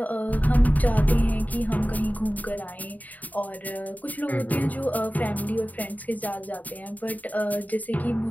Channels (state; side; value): late; right; 0.077 ms